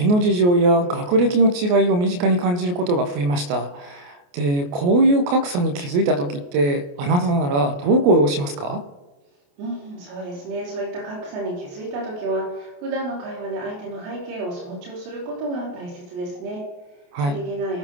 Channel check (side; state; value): left; late; 28 ms